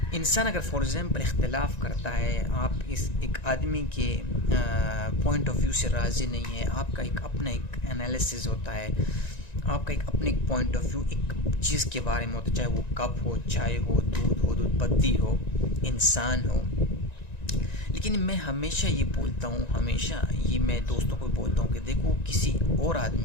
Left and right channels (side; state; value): right; late; 1.9 ms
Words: انسان اگر فار ایگزامپل اختلاف کرتا ہے، آپ اس ایک آدمی کے پوائنٹ آف ویو سے راضی نہیں ہے، آپ کا ایک اپنا ایک انالیسز ہوتا ہے، آپ کا ایک اپنے ایک پوائنٹ آف ویو ایک چیز کے بارے میں ہوتا ہے، چاہے وہ کپ ہو، چائے ہو، دودھ پتی ہو، انسان ہو. لیکن میں ہمیشہ یہ بولتا ہوں، ہمیشہ یہ میں دوستوں کو بولتا ہوں کہ دیکھو کسی اور